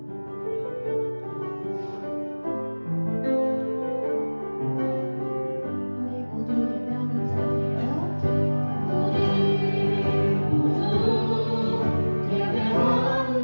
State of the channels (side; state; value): both; inverted; correlation -1.00